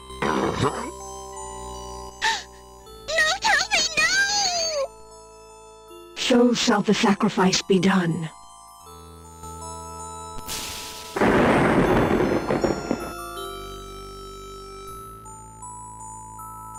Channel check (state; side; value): identical; both; correlation 1.00